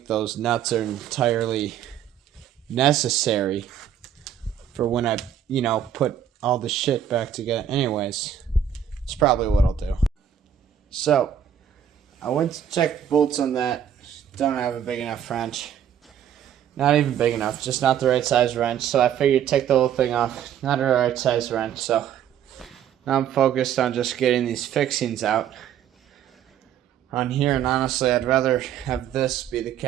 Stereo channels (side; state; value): left; quieter; 9.3 dB